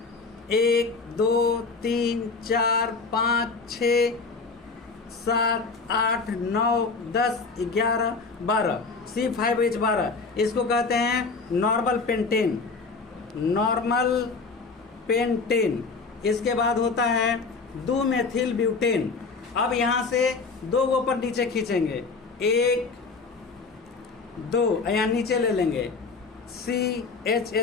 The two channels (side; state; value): right; quieter; 4.4 dB